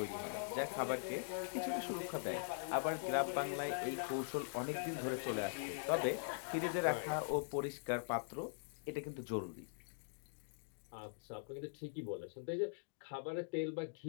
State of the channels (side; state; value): right; silent; digital silence